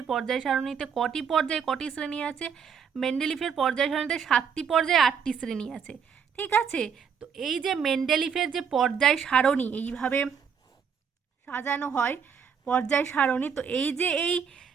পর্যায় সারণীতে কটি পর্যায় কটি শ্রেণী আছে। মেন্ডেলিভের পর্যায় সারণীতে 7টি পর্যায় 8টি শ্রেণী আছে। ঠিক আছে, তো এই যে মেন্ডেলিভের যে পর্যায় সারণী এইভাবে সাজানো হয় পর্যায় সারণী, তো এই যে এই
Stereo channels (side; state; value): left; quieter; 6.9 dB